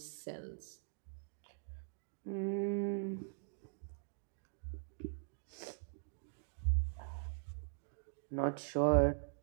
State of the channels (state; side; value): silent; left; digital silence